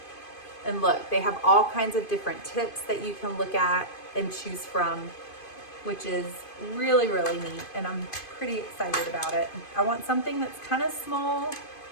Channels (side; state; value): right; late; 2.5 ms